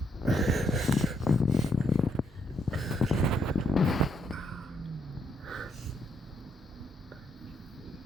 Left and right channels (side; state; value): both; normal; correlation 0.74